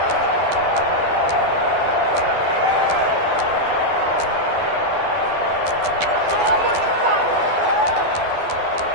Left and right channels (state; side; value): late; left; 12 ms